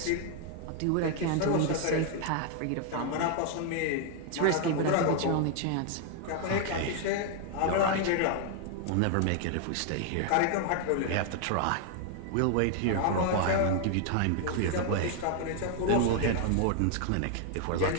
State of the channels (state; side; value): different; both; correlation 0.00